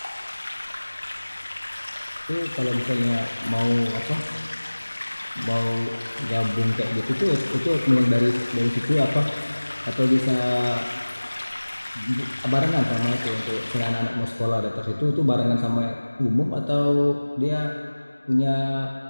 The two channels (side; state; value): both; inverted; correlation -1.00